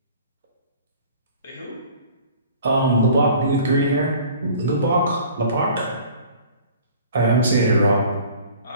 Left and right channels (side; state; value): both; inverted; correlation -0.48